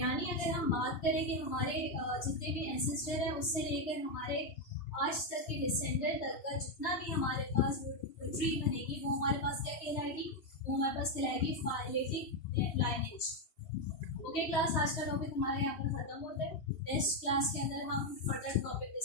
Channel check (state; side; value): late; right; 2.7 ms